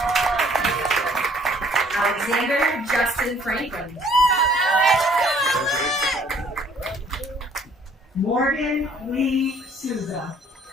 Alexander Justin Franklin. Morgan Lee Souza.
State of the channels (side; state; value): both; normal; correlation 0.59